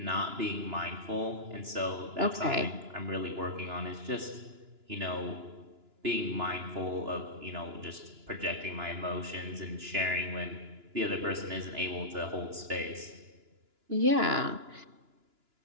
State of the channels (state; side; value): late; left; 2.9 ms